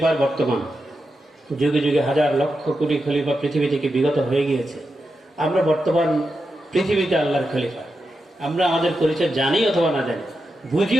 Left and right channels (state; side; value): normal; both; correlation 0.88